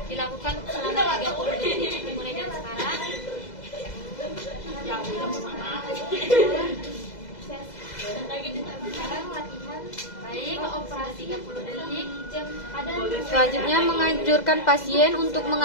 Dilakukan selama 30 detik, dimulai dari sekarang. Baik, sudah 30 detik. Selanjutnya menganjurkan pasien untuk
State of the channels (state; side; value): late; right; 2.0 ms